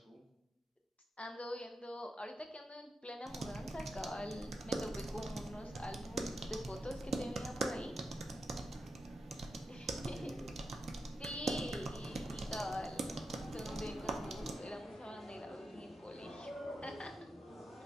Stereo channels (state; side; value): normal; both; correlation 0.87